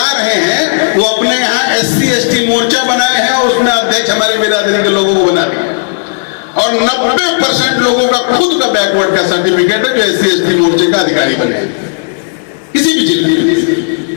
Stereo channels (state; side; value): silent; right; digital silence